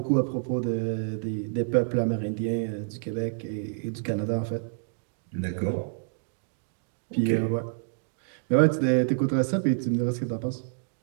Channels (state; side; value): silent; left; digital silence